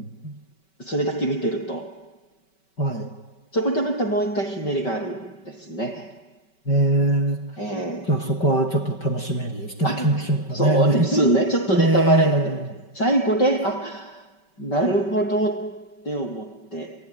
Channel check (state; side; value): late; right; 5.2 ms